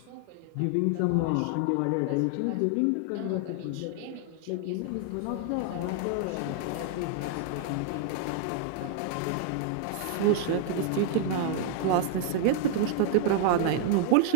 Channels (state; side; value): different; both; correlation 0.00